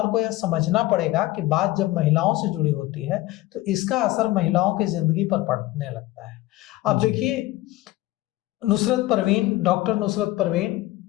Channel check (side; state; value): right; quieter; 17.4 dB